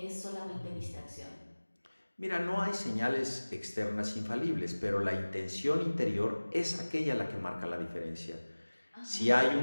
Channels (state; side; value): inverted; both; correlation -1.00